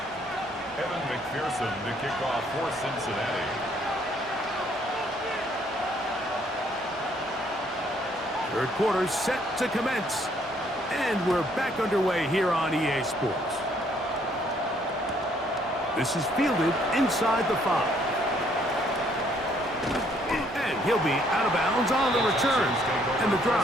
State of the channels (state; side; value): normal; both; correlation 0.66